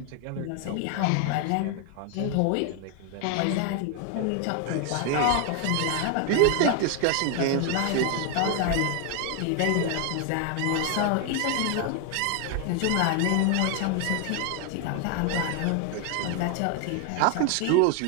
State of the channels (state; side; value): different; both; correlation 0.01